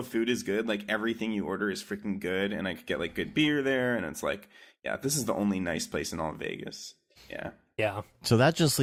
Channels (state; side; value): identical; both; correlation 1.00